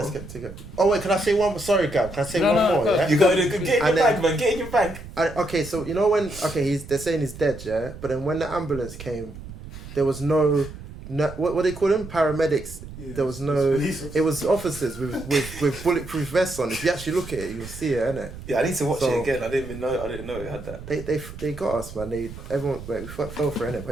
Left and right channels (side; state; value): right; noise; rumble, 13 dB below the sound